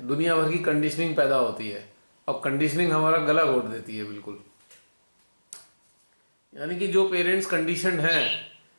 दुनिया भर की कंडीशनिंग पैदा होती है और कंडीशनिंग हमारा गला घोट देती है बिल्कुल। यानी कि जो पेरेंट्स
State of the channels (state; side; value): inverted; both; correlation -1.00